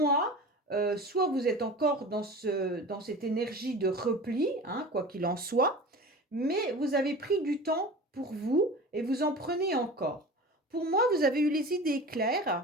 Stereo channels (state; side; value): normal; both; correlation 0.36